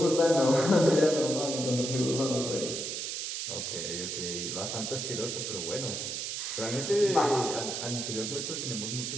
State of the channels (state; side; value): noise; right; hiss, 4 dB below the sound